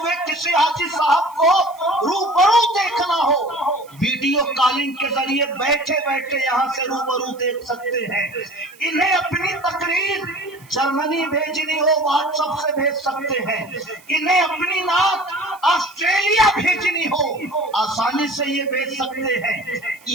کسی حاجی صاحب کو روبرو دیکھنا ہو ویڈیو کالنگ کے ذریعے بیٹھے بیٹھے یہاں سے روبرو دیکھ سکتے ہیں، انہیں اپنی تقریر جرمنی بھیجنی ہو واٹس ایپ سے بھیج سکتے ہیں، انہیں اپنی نعت آسٹریلیا بھیجنی ہو آسانی سے یہ بھیج سکتے ہیں۔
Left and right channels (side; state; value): right; noise; hiss, 26 dB below the sound